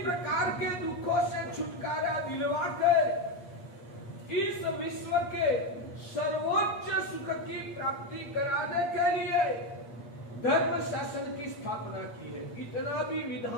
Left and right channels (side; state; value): right; late; 8.5 ms